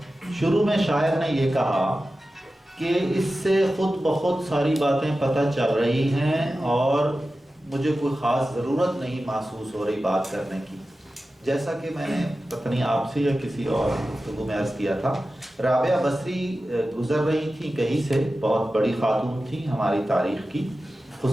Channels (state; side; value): normal; both; correlation 0.94